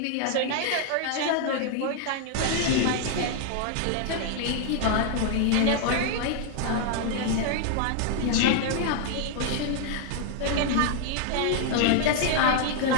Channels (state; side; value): different; both; correlation 0.00